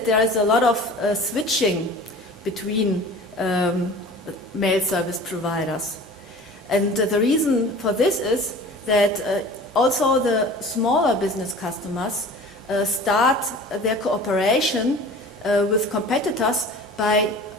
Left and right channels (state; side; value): normal; both; correlation 0.41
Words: there is a lot of switching between mail service providers. And the reason for this is that also the smaller business customers start their cooperation with competitors by